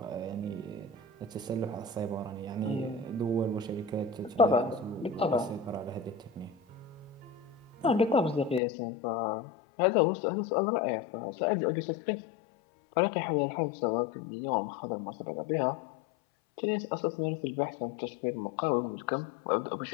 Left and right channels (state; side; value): drops out; right; at 8.6 s